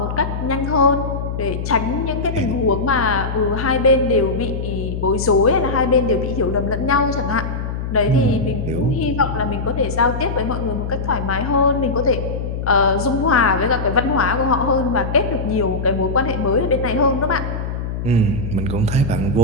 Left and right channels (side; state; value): left; noise; hum, 5 dB below the sound